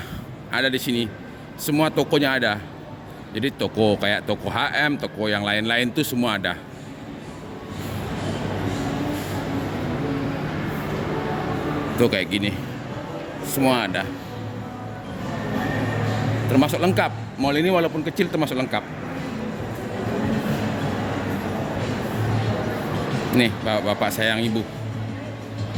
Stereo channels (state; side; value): identical; both; correlation 1.00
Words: ada di sini. Semua tokonya ada. Jadi toko kayak toko HM, toko yang lain-lain tuh semua ada. Tuh kayak gini. Semua ada. Termasuk lengkap. Mall ini walaupun kecil termasuk lengkap. Nih, bapak sayang ibu.